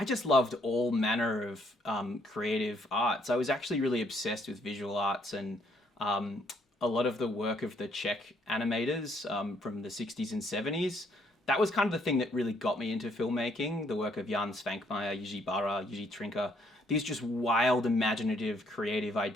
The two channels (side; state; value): both; normal; correlation 0.68